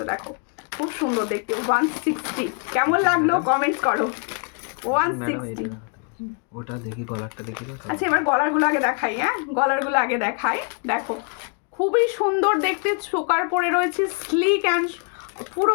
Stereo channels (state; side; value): quieter; right; 38.5 dB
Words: দেখো খুব সুন্দর দেখতে 160। কেমন লাগলো কমেন্ট করো। 160। ওটা দেখি, গলারটা দেখি। আচ্ছা এবার গলারগুলো আগে দেখাই, হ্যাঁ গলারগুলো আগে দেখাই। দেখো খুবই সুন্দর দেখতে, চোকার পরে রয়েছে স্লিক অ্যান্ড পুরো